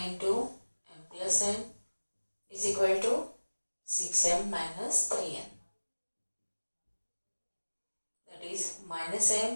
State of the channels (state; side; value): inverted; both; correlation -1.00